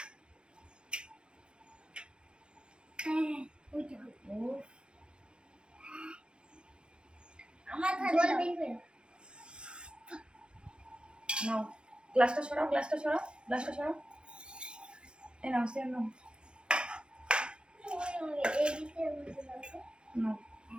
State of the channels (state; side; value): late; left; 0.053 ms